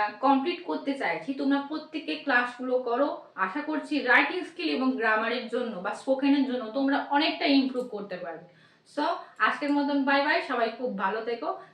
কমপ্লিট করতে চাইছি, তোমরা প্রত্যেকে ক্লাসগুলো করো। আশা করছি রাইটিং স্কিল এবং গ্রামারের জন্য বা স্পোকেনের জন্য তোমরা অনেকটা ইমপ্রুভ করতে পারবে। সো আজকের মতন বাই বাই, সবাই খুব ভালো থেকো,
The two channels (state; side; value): identical; both; correlation 1.00